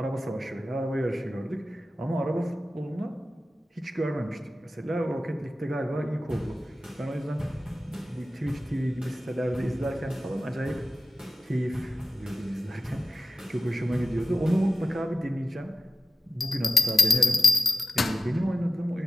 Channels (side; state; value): both; normal; correlation 0.94